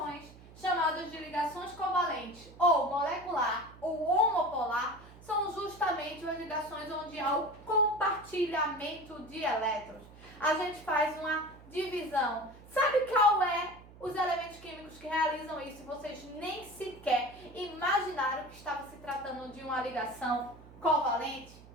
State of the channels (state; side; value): noise; right; hum, 20 dB below the sound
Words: chamadas de ligações covalentes, ou molecular, ou homopolar, são justamente as ligações onde há o compartilhamento de elétrons. A gente faz uma divisão. Sabe qual é os elementos químicos que realizam isso? Vocês nem sequer imaginaram que estava se tratando de uma ligação covalente?